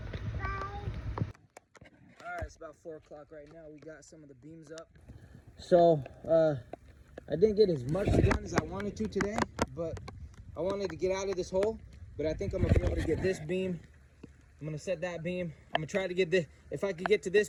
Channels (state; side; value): identical; both; correlation 1.00